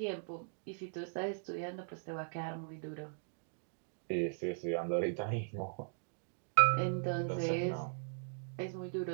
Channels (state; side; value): silent; left; digital silence